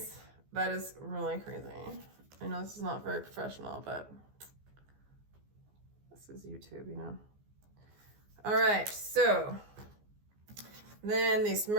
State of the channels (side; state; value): left; late; 14 ms